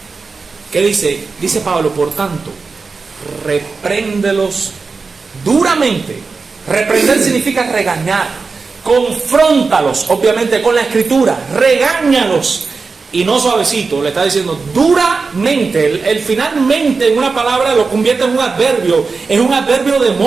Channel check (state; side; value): quieter; left; 4.5 dB